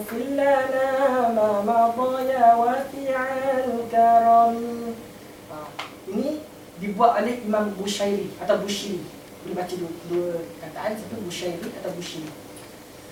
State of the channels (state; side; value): identical; both; correlation 1.00